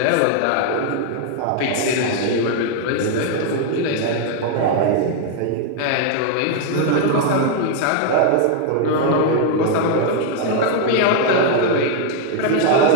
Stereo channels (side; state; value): both; different; correlation 0.00